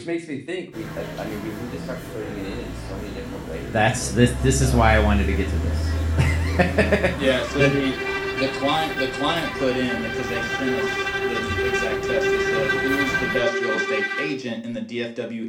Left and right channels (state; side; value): identical; both; correlation 1.00